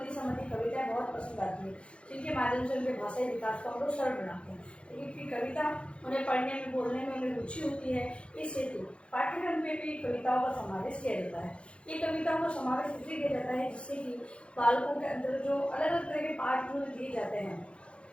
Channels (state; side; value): late; right; 0.059 ms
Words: संबंधी कविताएं बहुत पसंद आती है, जिनके माध्यम से उनके भाषाई विकास को हम लोग सरल बनाते हैं। क्योंकि कविता उन्हें पढ़ने में, बोलने में उन्हें रुचि होती है, इस हेतु पाठ्यक्रम में भी कविताओं का समावेश किया जाता है। ये कविताओं का समावेश इसलिए किया जाता है जिससे कि बालकों के अंदर जो अलग अलग तरह के पाठ जो दिए जाते हैं,